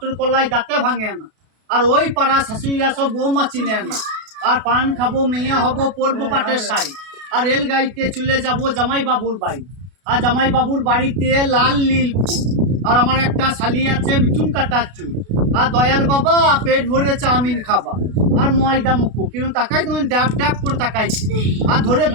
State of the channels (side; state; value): left; late; 32 ms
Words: কলাই দাঁতে ভাঙে না আর ওই পাড়া শাশুড়িরা সব বৌমা চিনে না আর পান খাবো মেয়ে হবো পরবো পাটের শাড়ি আর রেল গাড়িতে চলে যাবো জামাই বাবুর বাড়ি আর জামাই বাবুর বাড়িতে লাল নীল ফুল আর আমার একটা শালি আছে মিঠুন কাটার চুল আর দয়াল বাবা পেট ভরে চাউমিন খাবা আর ময়দা মুখো কিন্তু তাকাই তুমি ড্যাপ ড্যাপ করে তাকাইছি আর ধরে